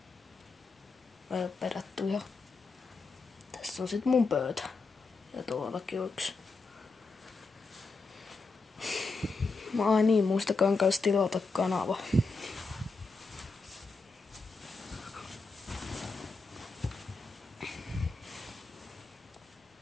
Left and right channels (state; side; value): quieter; right; 3.9 dB